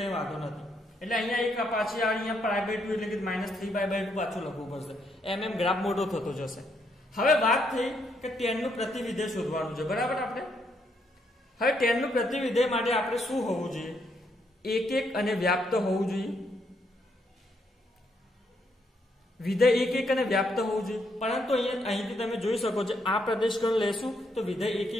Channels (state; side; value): normal; both; correlation 0.75